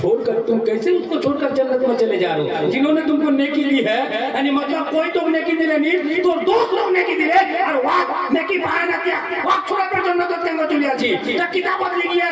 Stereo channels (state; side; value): identical; both; correlation 1.00